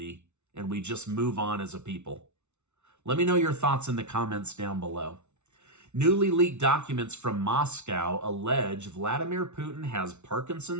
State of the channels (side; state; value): left; late; 0.82 ms